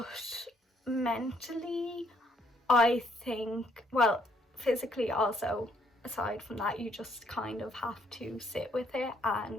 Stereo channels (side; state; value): both; normal; correlation 0.68